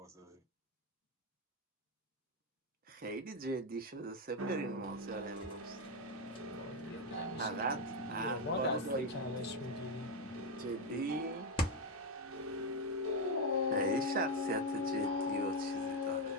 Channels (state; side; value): normal; both; correlation 0.06